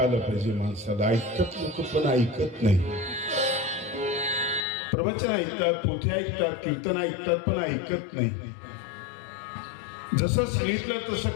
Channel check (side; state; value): right; drops out; at 4.7 s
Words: आलं पाहिजे माणसाला, ऐकतात लोक पण ऐकत नाही। प्रवचन ऐकतात, पोथी ऐकतात, कीर्तन ऐकतात पण ऐकत नाही, जसं सांगितलं तसं